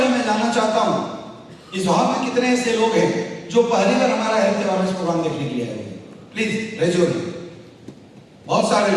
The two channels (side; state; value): both; identical; correlation 1.00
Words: मैं जानना चाहता हूं इस हॉल में कितने ऐसे लोग हैं जो पहली बार हमारा हेल्थ अवेयरनेस प्रोग्राम देखने के लिए आए हैं। Please raise your hand. बहुत सारे